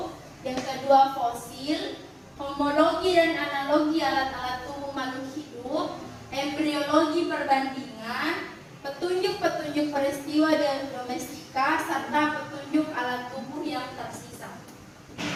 yang kedua fosil, homologi dan analogi alat-alat tubuh makhluk hidup, embriologi perbandingan, petunjuk-petunjuk peristiwa dan domestika, serta petunjuk alat tubuh yang tersisa.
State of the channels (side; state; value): both; identical; correlation 1.00